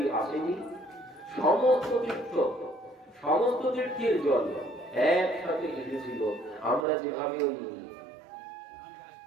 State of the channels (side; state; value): left; drops out; at 6.9 s